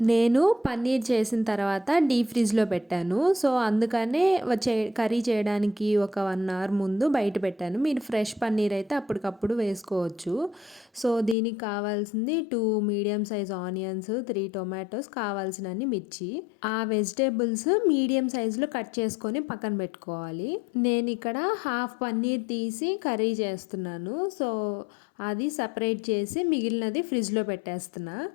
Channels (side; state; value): right; drops out; at 11.4 s